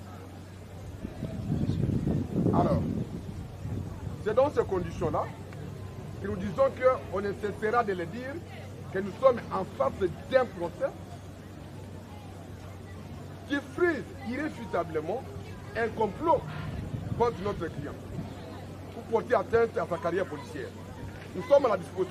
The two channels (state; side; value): identical; both; correlation 1.00